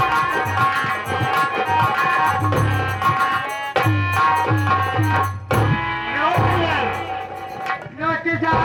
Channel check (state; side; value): identical; both; correlation 1.00